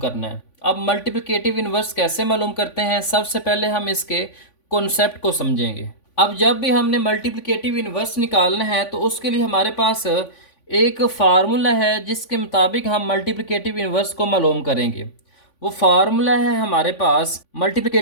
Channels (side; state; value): right; late; 3.5 ms